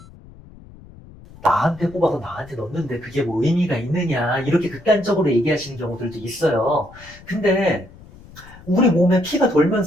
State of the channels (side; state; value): left; noise; rumble, 21 dB below the sound